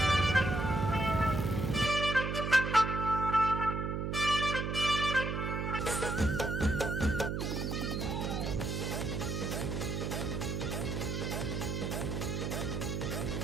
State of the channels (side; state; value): right; noise; hum, 1 dB below the sound